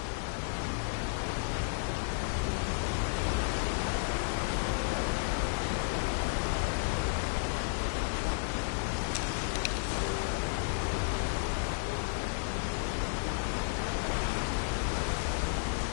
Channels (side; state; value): right; silent; 56 dB below the other